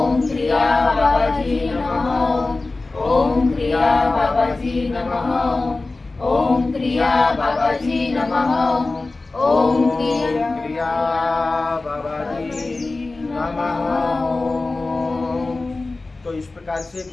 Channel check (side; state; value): right; quieter; 3.4 dB